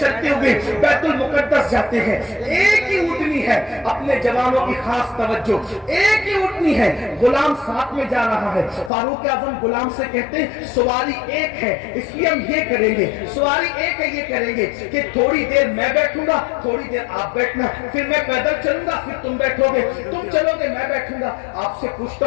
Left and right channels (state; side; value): drops out; right; at 8.9 s